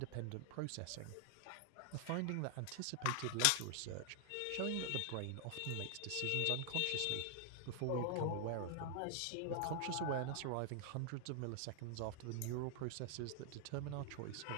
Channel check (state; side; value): different; both; correlation 0.00